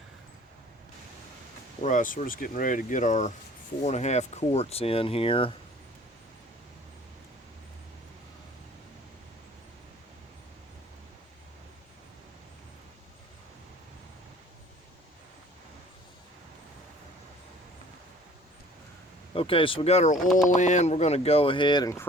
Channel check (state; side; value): normal; both; correlation 0.51